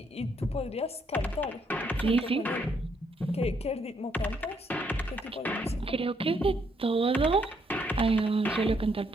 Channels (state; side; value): normal; both; correlation 0.73